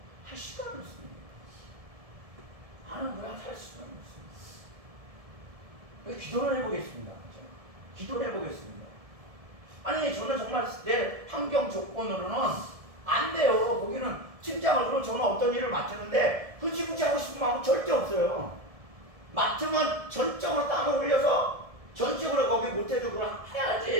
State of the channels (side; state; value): left; late; 1.7 ms